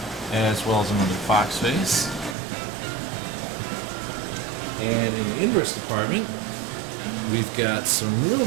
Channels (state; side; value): drops out; left; at 2.4 s